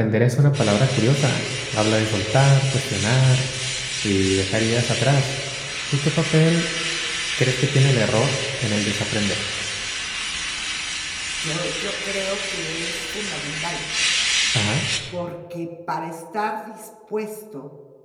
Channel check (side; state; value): both; identical; correlation 1.00